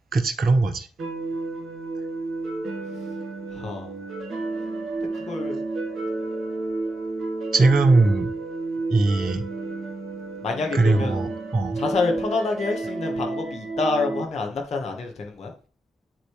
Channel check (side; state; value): both; normal; correlation 0.87